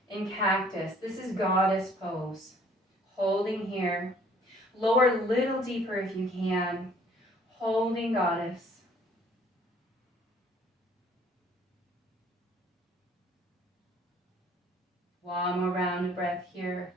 in cactus. This is goddess pose. Holding here. Lower a little deeper if you can. Holding goddess. One more round of breath here.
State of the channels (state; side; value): normal; both; correlation 0.58